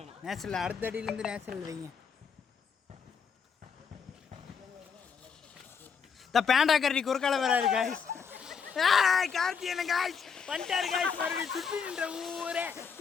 நேச்சுரல் அடுத்த அடியிலேருந்து நேச்சுரல் வைங்க. இந்த பேண்டா கரடி குறுக்கால வராரு காய்ஸ். கார்த்தியன் காய்ஸ் வந்துட்டாரு காய்ஸ். மறுபடியும் சுற்றி நின்ற ஊரே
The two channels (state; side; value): quieter; right; 6.2 dB